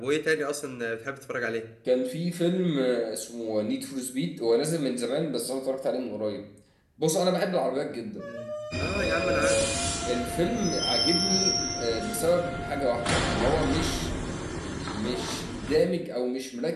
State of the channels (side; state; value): both; identical; correlation 1.00